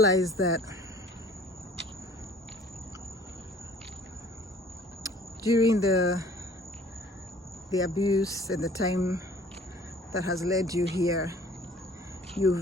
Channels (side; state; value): both; normal; correlation 0.52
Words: that during the abuse and the time that has led you here,